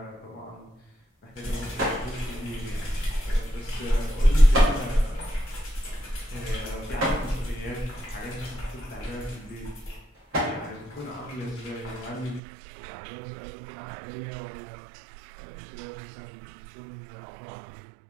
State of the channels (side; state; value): left; drops out; at 12.4 s